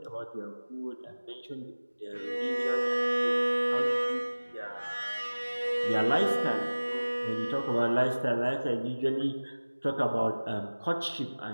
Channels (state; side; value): inverted; both; correlation -1.00